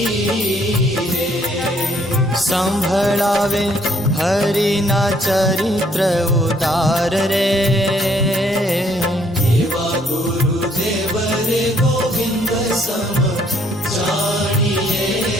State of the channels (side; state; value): both; normal; correlation 0.66